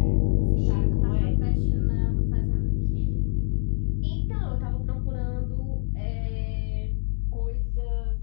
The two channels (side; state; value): right; silent; digital silence